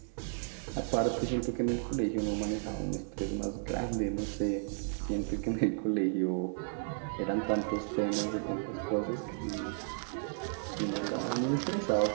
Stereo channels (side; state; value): left; silent; digital silence